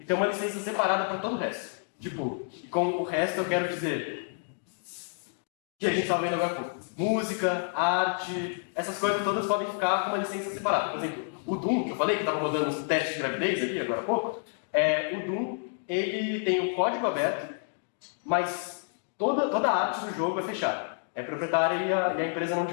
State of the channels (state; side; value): silent; right; digital silence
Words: ter uma licença separada para todo o resto. Tipo, e com o resto eu quero dizer que a gente estava vendo agora há pouco. Música, arte, essas coisas todas podem ficar com uma licença separada. Por exemplo, o Doom, que eu falei que estava rodando uns testes de gravidez ali agora há pouco, o Doom, ele tem o código aberto, mas toda a arte do jogo é fechada. É proprietária e a empresa não